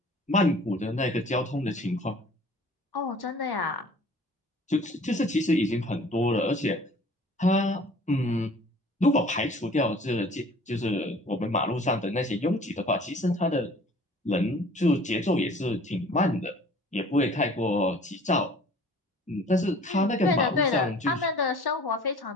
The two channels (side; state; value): both; normal; correlation 0.49